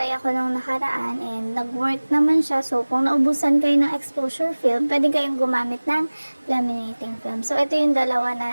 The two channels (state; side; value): inverted; both; correlation -1.00